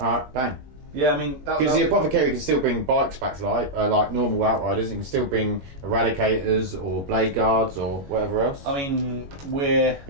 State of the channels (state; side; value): late; left; 21 ms